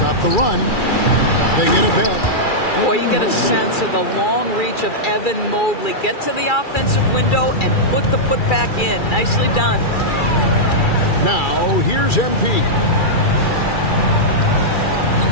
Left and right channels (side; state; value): right; late; 2.3 ms